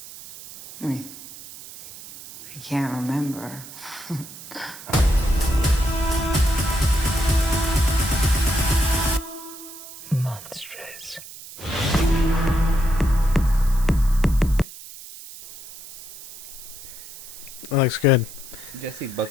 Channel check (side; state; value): right; noise; hiss, 15 dB below the sound